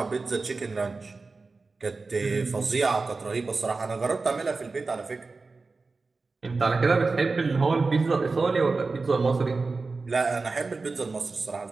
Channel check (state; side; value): quieter; left; 4.0 dB